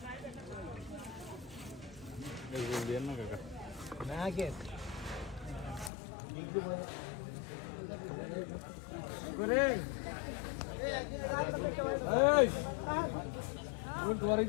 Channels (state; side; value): drops out; right; at 5.9 s